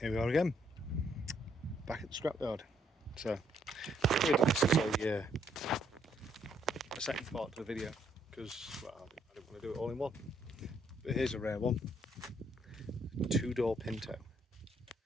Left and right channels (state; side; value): normal; both; correlation 0.71